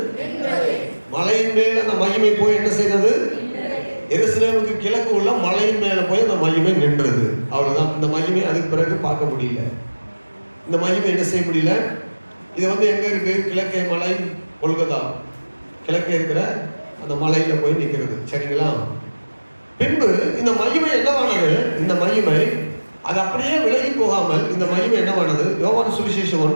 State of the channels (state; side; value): inverted; both; correlation -1.00